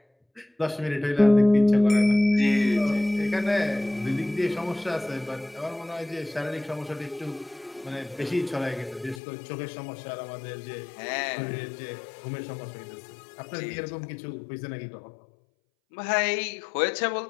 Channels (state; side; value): drops out; right; at 9.2 s